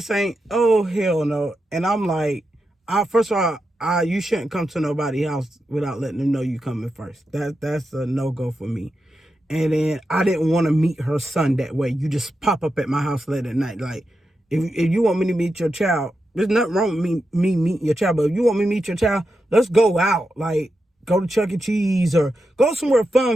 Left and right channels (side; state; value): both; normal; correlation 0.88